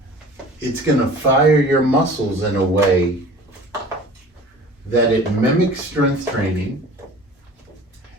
it's going to fire your muscles in a way that it mimics strength training,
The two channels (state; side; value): normal; both; correlation 0.43